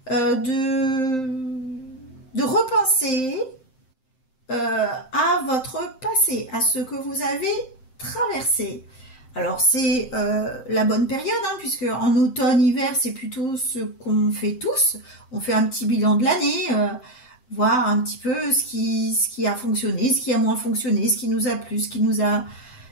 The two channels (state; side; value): late; right; 7.7 ms